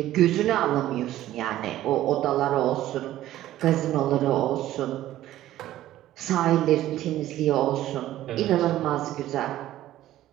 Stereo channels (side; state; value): left; quieter; 13.9 dB